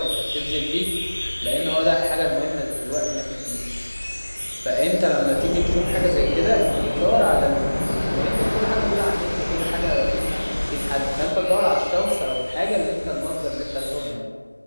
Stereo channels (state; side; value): inverted; both; correlation -1.00